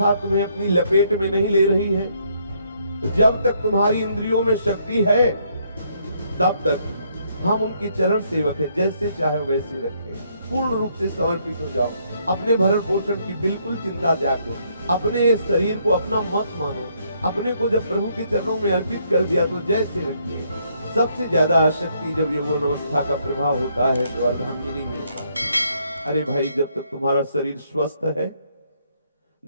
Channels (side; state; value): both; inverted; correlation -0.71